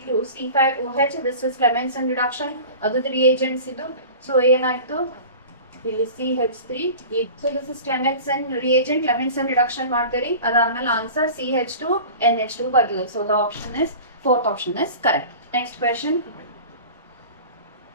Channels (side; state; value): both; inverted; correlation -0.38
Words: C5OH, this is Clemmensen reduction. ಅದು reagents ಇದು. ಸೊ ಏನಾಯ್ತು? ಇಲ್ಲಿ CH3. So this is Clemmensen reagent, Clemmensen reduction ಮಾಡ್ತೀರಿ. ಅದಾದ್ಮೇಲೆ ಆನ್ಸರ್ CH2NH2 ಬರ್ತದೆ. So the option is fourth option is correct. Next question.